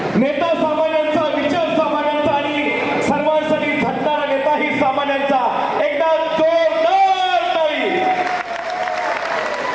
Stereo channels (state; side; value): noise; left; hum, 30 dB below the sound